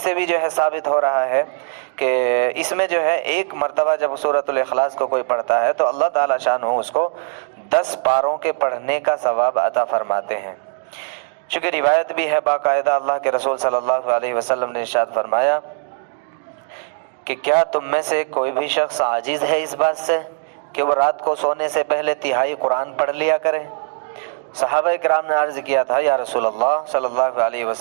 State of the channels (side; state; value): left; silent; digital silence